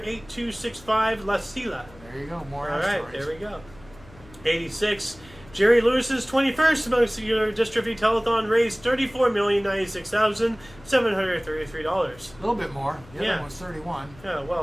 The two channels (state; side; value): noise; left; hum, 22 dB below the sound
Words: La Silla. There you go, more All asteroids. right, there we go. 86, Jerry Lewis's 21st muscular dystrophy telethon raised $34,096,733. A little bit more. The other one was 31. Yeah,